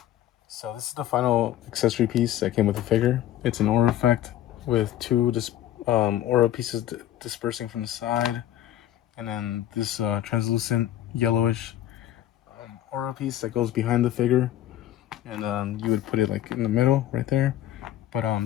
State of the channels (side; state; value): right; quieter; 12.6 dB